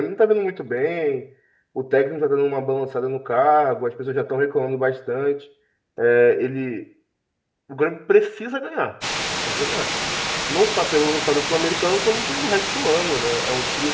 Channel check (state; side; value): identical; both; correlation 1.00